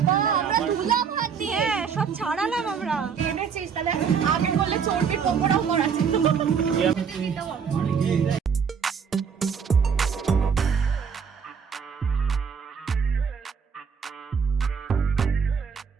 বাবা, আমরা ধুলাম হাত দিয়ে। হ্যাঁ সব ছাড়ালাম আমরা। এনেছিস তাহলে আগে করলে চর্বির পকোড়াও করাছে।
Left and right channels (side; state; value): left; quieter; 6.5 dB